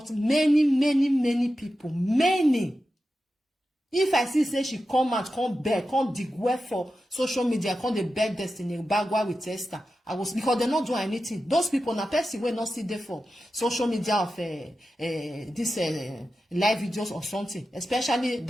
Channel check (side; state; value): both; normal; correlation 0.92